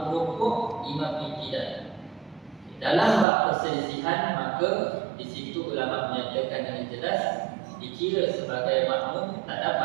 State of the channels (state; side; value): drops out; left; at 3.2 s